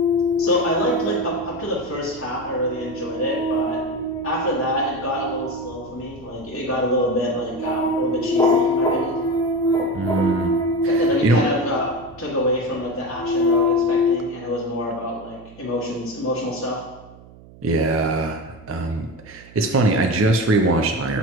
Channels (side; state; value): right; noise; hum, 21 dB below the sound